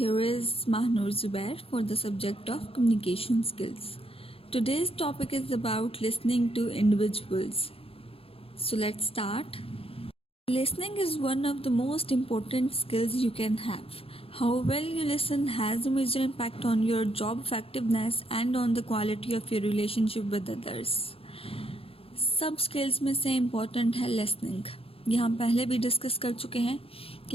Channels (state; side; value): late; right; 0.27 ms